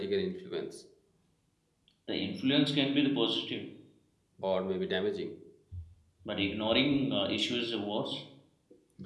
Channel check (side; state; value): both; identical; correlation 1.00